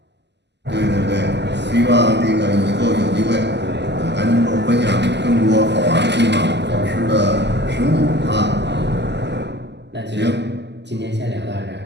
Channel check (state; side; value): late; left; 0.50 ms